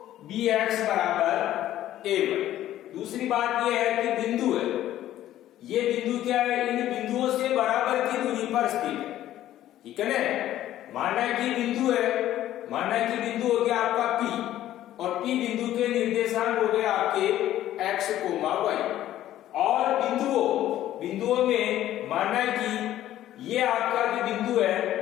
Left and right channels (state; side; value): quieter; right; 13.1 dB